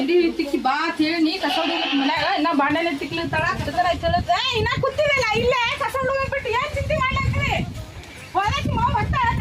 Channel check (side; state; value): both; identical; correlation 1.00